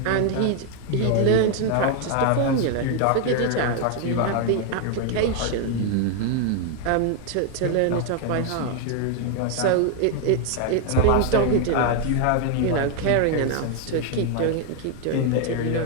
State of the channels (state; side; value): different; both; correlation 0.00